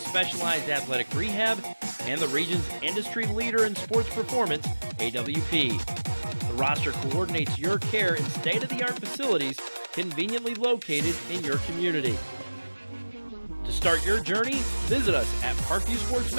athletic rehab, and the region's industry leader in sports performance, AWP. The roster coordinates your care in state-of-the-art facilities conveniently located in your community. To start your journey, visit us at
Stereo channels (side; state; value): both; inverted; correlation -1.00